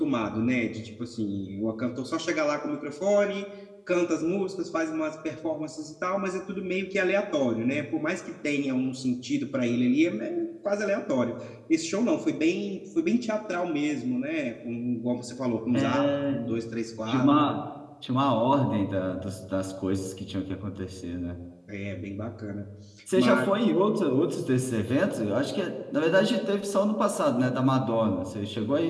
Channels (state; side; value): identical; both; correlation 1.00